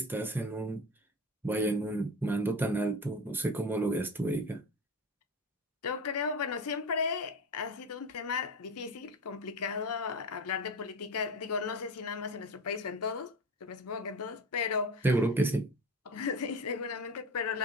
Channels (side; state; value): both; normal; correlation 0.29